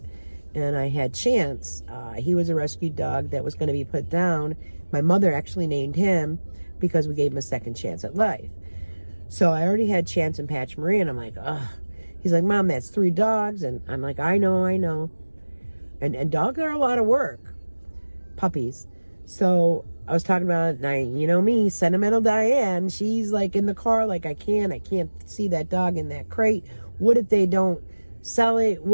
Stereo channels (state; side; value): inverted; both; correlation -1.00